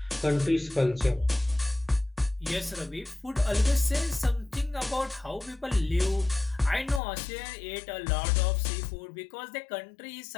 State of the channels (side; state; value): right; drops out; at 7.0 s